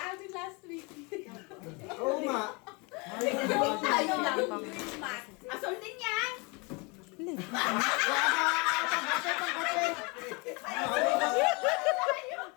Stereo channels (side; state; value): right; quieter; 29.4 dB